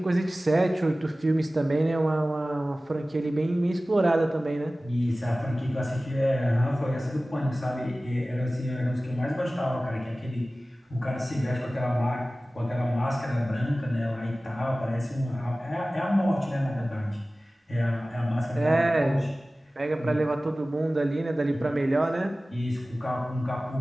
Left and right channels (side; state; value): both; normal; correlation 0.97